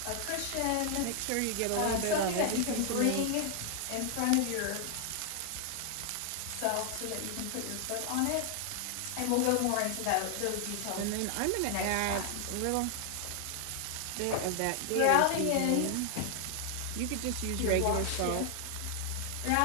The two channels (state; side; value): different; both; correlation 0.00